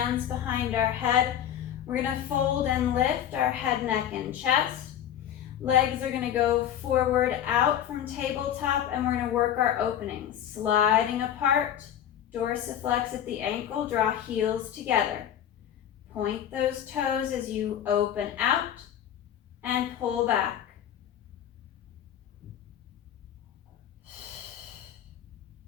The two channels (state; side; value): quieter; right; 10.3 dB